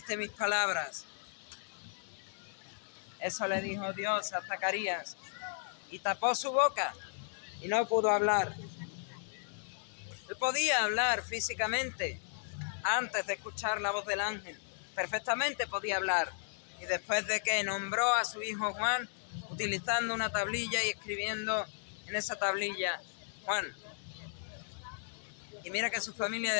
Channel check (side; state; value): right; silent; 54 dB below the other